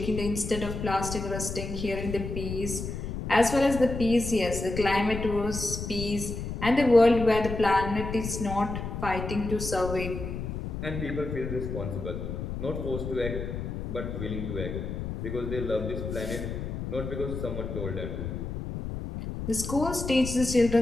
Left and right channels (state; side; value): noise; left; rumble, 5 dB below the sound